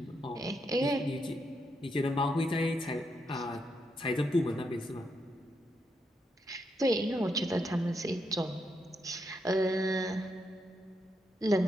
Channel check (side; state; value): both; normal; correlation 0.80